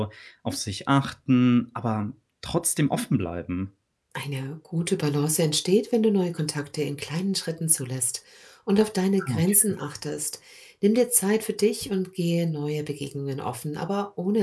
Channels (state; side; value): identical; both; correlation 1.00